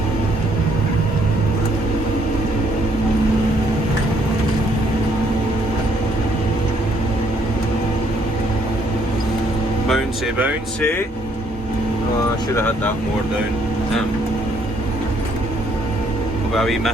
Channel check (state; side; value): normal; both; correlation 0.68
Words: Bouncy, bouncy. Oh, I should have had that more down. I'll be a wee